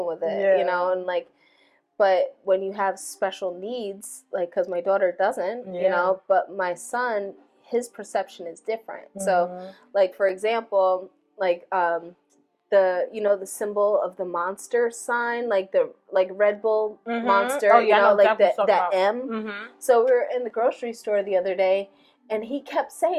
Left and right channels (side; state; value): both; identical; correlation 1.00